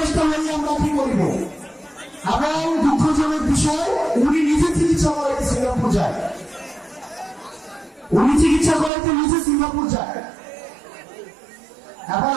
নিয়ে আমরা কি করব? এবং দুঃখজনক বিষয়, উনি নিজে চিকিৎসা করাইতে সিঙ্গাপুর যায়। উনি চিকিৎসা করাইতে নিজে সিঙ্গাপুর যায়। এখন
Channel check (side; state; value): left; drops out; at 8.9 s